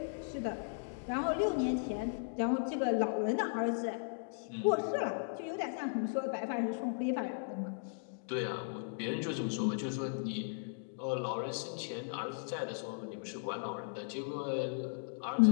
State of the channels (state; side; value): silent; right; digital silence